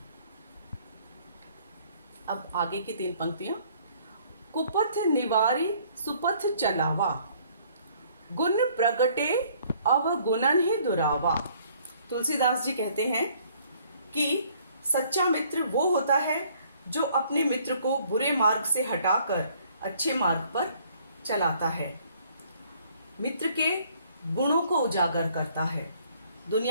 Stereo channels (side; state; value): both; inverted; correlation -0.61